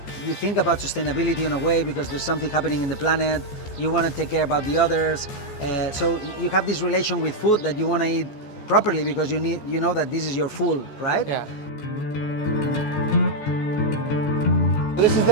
think about sustainability in a way because there's something happening in the planet. You want to take care about the others. So you have this relation with food that you want to eat properly because you know that this is your food, right? Yeah. This is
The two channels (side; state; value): right; late; 14 ms